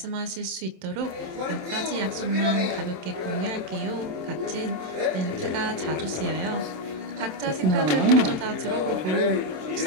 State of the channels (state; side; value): late; left; 27 ms